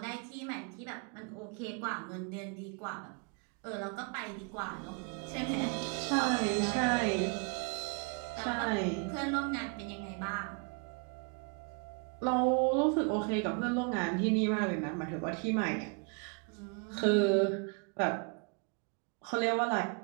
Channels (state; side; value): quieter; left; 35.1 dB